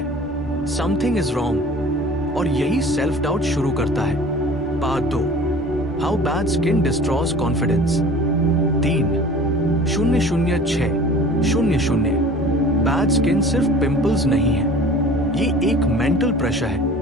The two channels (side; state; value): both; normal; correlation 0.43